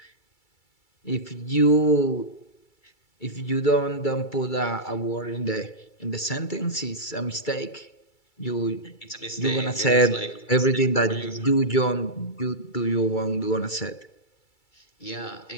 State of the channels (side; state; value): right; late; 2.3 ms